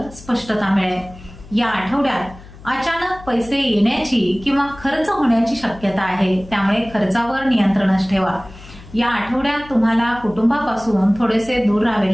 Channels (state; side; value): noise; left; hum, 19 dB below the sound